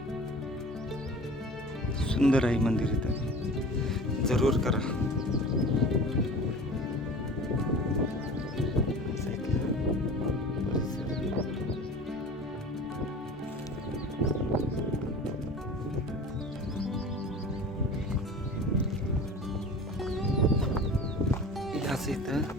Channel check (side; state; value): both; normal; correlation 0.39